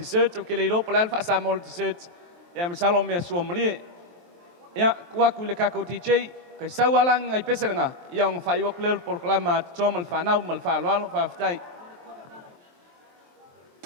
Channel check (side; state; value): left; late; 23 ms